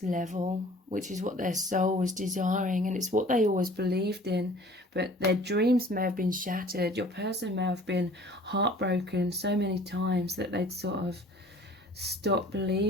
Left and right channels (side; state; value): both; normal; correlation 0.49